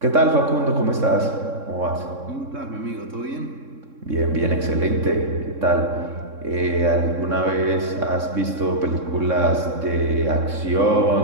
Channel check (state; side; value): late; left; 3.6 ms